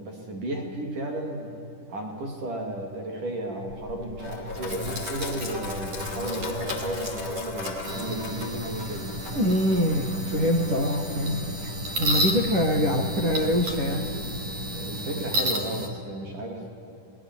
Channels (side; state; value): left; late; 10 ms